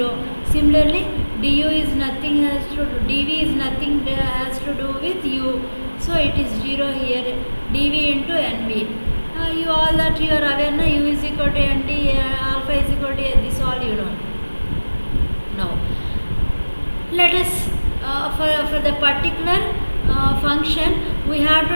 Similarly, du is nothing has to do, dv is nothing has to do with u, so it is 0 here, dv into nv. You all that you are aware now, u is equal to nt, alpha is equal to this, all you know. Now let us for the particular function we have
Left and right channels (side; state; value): both; inverted; correlation -1.00